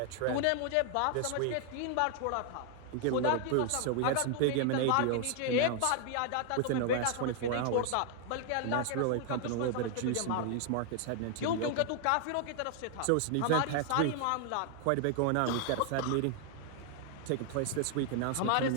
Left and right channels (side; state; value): both; different; correlation 0.00